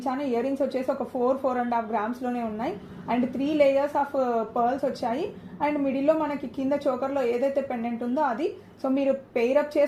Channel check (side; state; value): both; identical; correlation 1.00